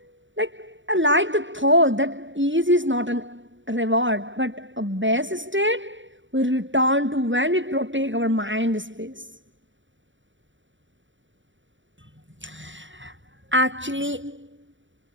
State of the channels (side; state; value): left; late; 0.55 ms